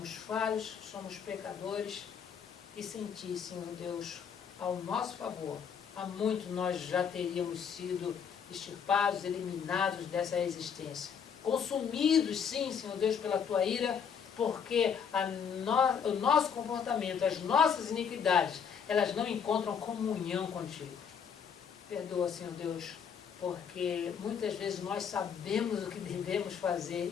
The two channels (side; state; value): right; quieter; 7.1 dB